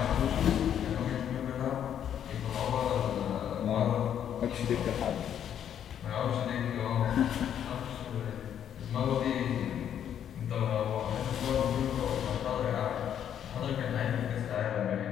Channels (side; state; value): right; quieter; 9.5 dB